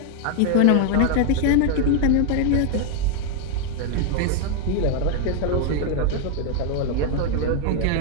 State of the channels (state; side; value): different; both; correlation 0.00